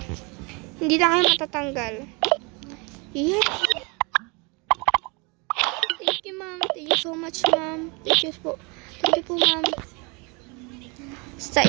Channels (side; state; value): left; quieter; 29.8 dB